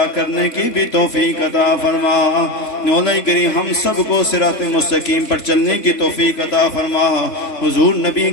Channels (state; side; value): late; right; 3.4 ms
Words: کرنے کی بھی توفیق عطا فرما۔ مولا کریم ہم سب کو صراط مستقیم پر چلنے کی توفیق عطا فرما۔ حضور نبی